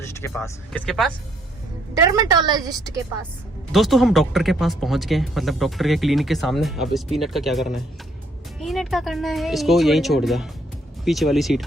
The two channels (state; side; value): normal; both; correlation 0.69